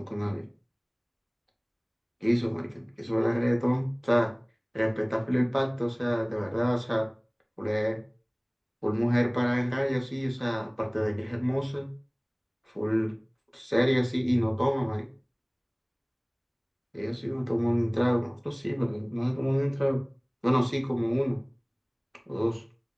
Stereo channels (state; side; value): identical; both; correlation 1.00